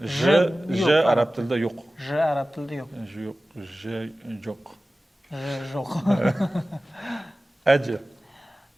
j yo'q, arab tilida yo'q. J arab tilida yo'q. Yo'q, j yo'q. Yo'q. Aji.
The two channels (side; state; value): both; normal; correlation 0.96